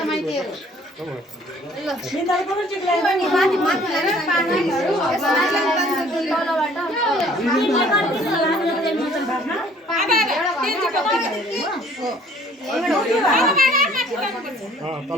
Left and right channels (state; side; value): normal; both; correlation 0.56